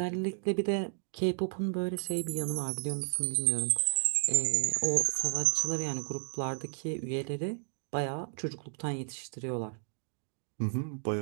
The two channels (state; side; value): silent; left; digital silence